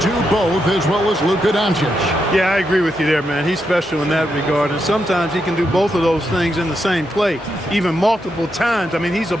do both as well as Luka Doncic. Yeah, I agree with you there, man. He's special in that regard, and sometimes he can do both of those things in the same play, even multiple times. I mean, he's a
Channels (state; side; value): normal; both; correlation 0.83